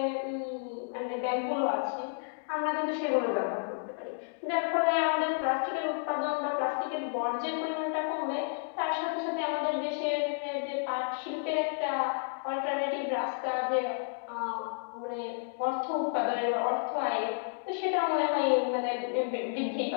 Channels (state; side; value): silent; right; digital silence